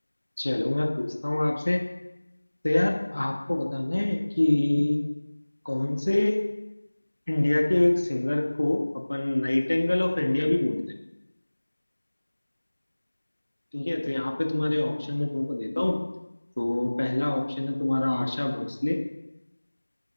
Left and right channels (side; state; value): both; inverted; correlation -1.00